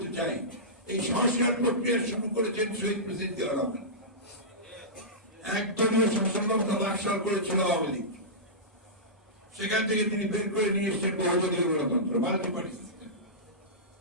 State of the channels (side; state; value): both; normal; correlation -0.17